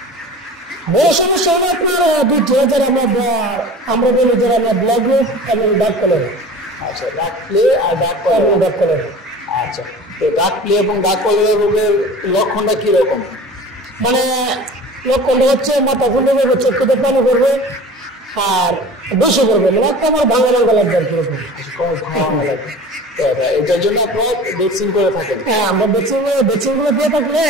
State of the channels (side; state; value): both; normal; correlation 0.39